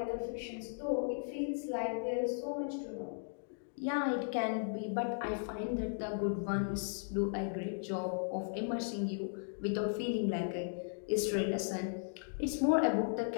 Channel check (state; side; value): silent; right; digital silence